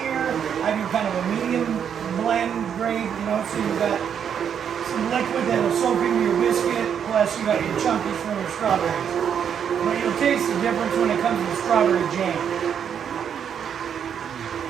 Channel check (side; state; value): left; quieter; 8.1 dB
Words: I do kind of a medium blend grade, so you've got some liquid that will soak into your biscuit, plus you got your chunkies from your strawberries. But you'll taste the difference when it comes to the strawberry jam.